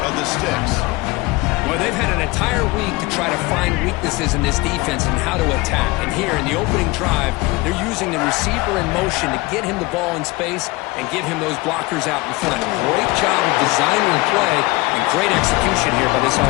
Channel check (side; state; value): right; quieter; 22.4 dB